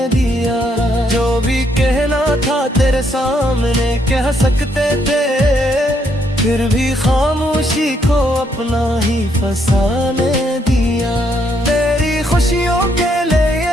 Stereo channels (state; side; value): normal; both; correlation 0.73